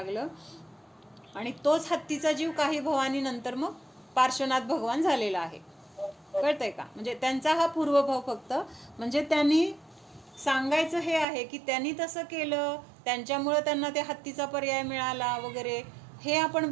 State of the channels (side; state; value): left; drops out; at 11.2 s